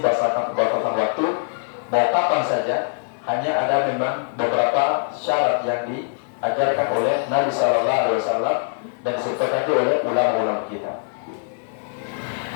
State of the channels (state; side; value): silent; right; digital silence